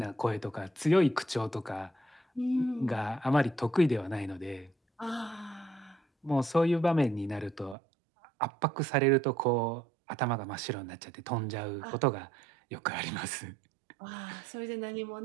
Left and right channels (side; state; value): left; drops out; at 7.8 s